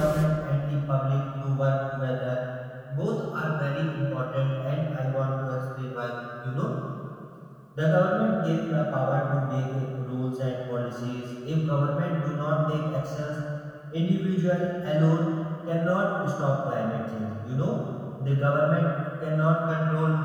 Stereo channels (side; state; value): both; identical; correlation 1.00